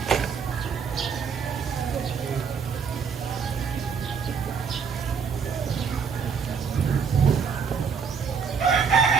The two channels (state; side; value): quieter; left; 6.1 dB